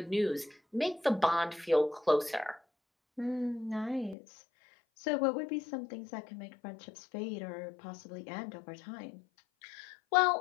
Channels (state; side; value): drops out; right; at 4.2 s